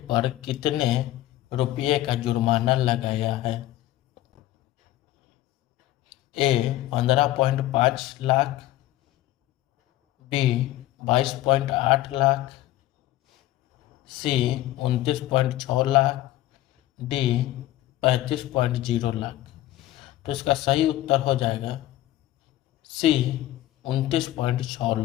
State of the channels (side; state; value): right; quieter; 14.9 dB